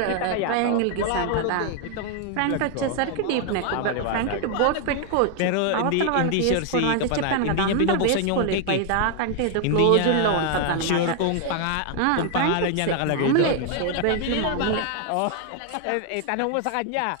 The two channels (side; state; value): both; different; correlation 0.00